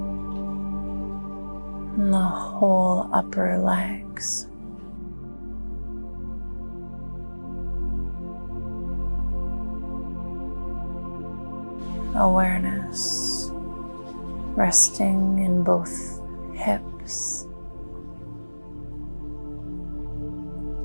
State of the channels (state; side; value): inverted; both; correlation -1.00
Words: and the whole upper legs. Awareness resting in both hips